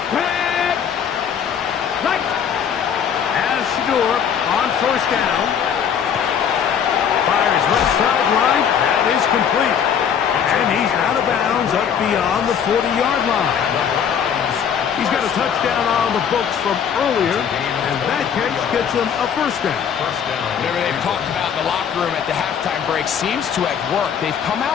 On first down. Fires left sideline. That is complete. And he's out of bounds up beyond the 40-yard line. He's got a touchdown on the books from earlier, and that catch gets him a first down. Whatever they've talked about in the locker room at the halftime break seems to have worked. They've come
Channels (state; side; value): quieter; right; 7.9 dB